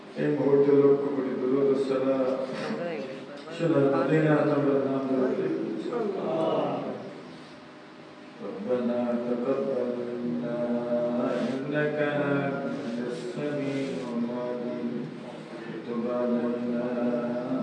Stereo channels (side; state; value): both; identical; correlation 1.00